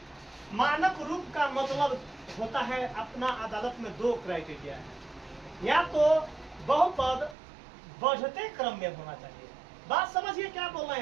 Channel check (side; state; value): left; drops out; at 7.4 s